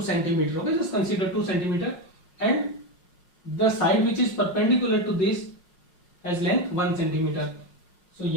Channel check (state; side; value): late; right; 5.5 ms